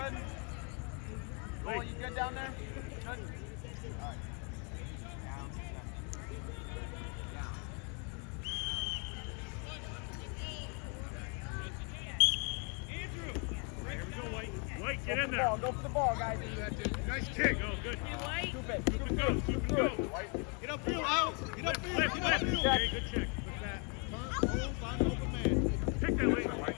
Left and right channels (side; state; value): right; quieter; 36.5 dB